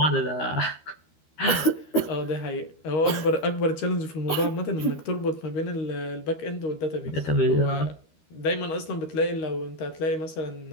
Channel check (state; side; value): late; right; 13 ms